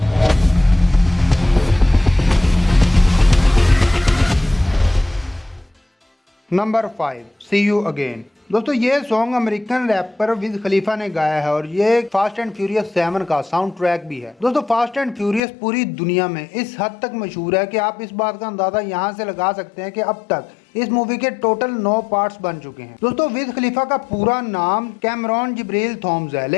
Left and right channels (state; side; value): drops out; right; at 15.4 s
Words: Number 5, see you again. दोस्तों ये song American rapper Wiz Khalifa ने गाया है और ये फास्ट एंड फ्यूरियस 7 का साउंड ट्रैक भी है। दोस्तों फास्ट एंड फ्यूरियस पूरी दुनिया में इस हद तक मशहूर है कि आप इस बात का अंदाजा यहाँ से लगा सकते हैं कि अब तक इस मूवी के टोटल 9 पार्ट्स बन चुके हैं। दोस्तों विज खलीफा का पूरा नाम कैमरॉन जिब्रील थॉम्स है,